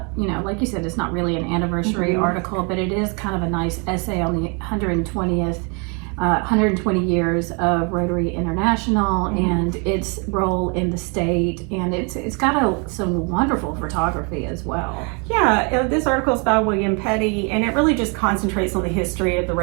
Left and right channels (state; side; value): quieter; left; 34.0 dB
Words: like you said, it's not really an anniversary article, but it is kind of a nice essay on the 120 years of Rotary International and its role in the state, and it's got some wonderful photography as well. Yeah, this article is by William Petty, and it really just concentrates on the history of the